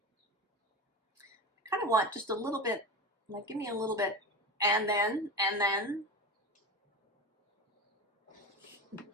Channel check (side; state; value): both; normal; correlation 0.25